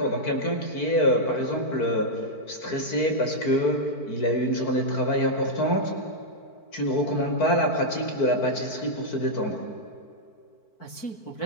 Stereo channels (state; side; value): late; right; 4.5 ms